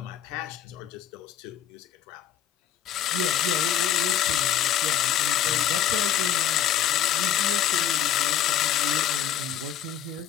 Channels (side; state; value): right; quieter; 10.0 dB